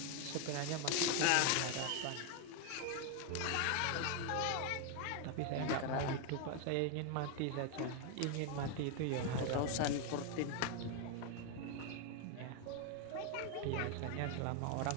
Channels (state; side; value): different; both; correlation 0.01